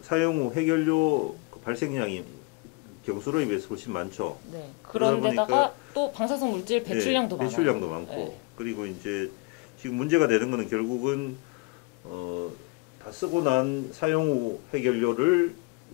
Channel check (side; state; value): right; quieter; 26.5 dB